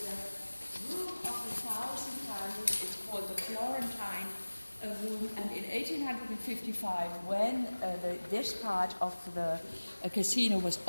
room of the 1,000 candles. It's called the Florentine room, and in 1855, when this part of the casino was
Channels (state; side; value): inverted; both; correlation -1.00